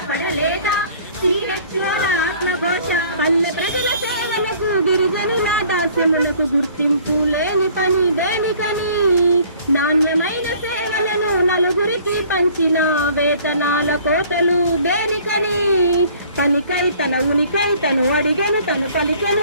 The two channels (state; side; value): inverted; both; correlation -0.54